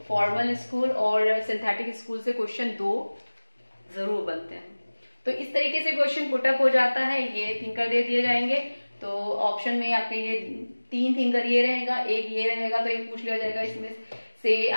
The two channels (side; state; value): both; inverted; correlation -1.00